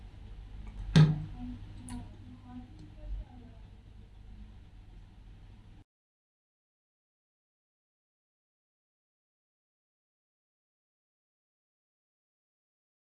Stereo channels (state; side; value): identical; both; correlation 1.00